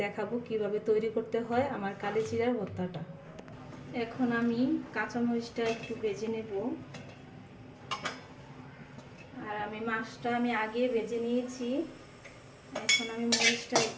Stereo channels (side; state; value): both; identical; correlation 1.00